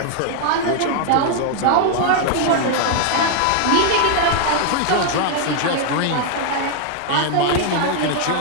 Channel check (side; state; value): both; different; correlation 0.00